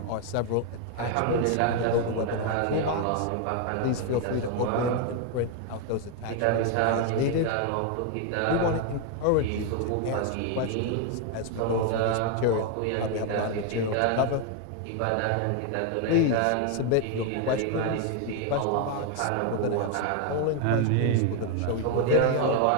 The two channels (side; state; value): both; different; correlation 0.00